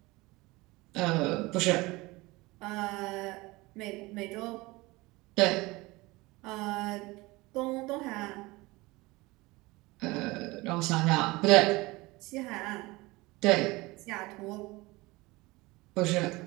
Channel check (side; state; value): left; quieter; 22.0 dB